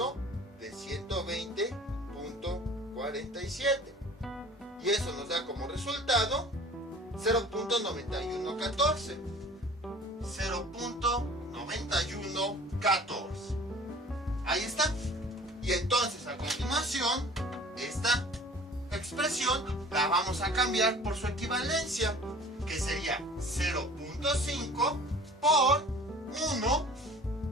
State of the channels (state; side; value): normal; both; correlation 0.46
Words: de 120.47, y eso nos da como resultado 0.9114. 0.9114. Ahí está. Y entonces a continuación esta expresión la vamos a cambiar por su equivalencia, que sería 0.5 por 1